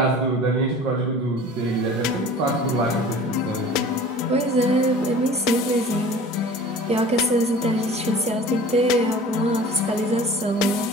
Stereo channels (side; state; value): both; normal; correlation 0.43